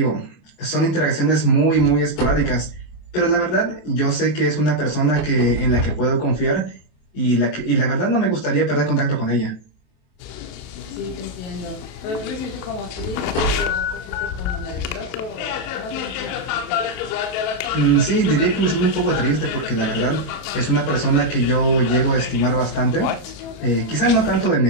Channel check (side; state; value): right; late; 27 ms